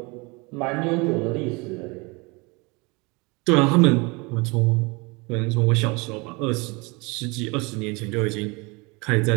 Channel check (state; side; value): quieter; left; 27.5 dB